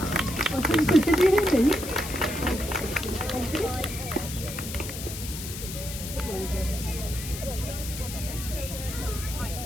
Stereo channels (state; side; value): noise; left; hiss, 9 dB below the sound